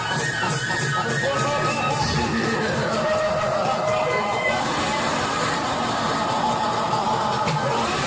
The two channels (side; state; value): both; identical; correlation 1.00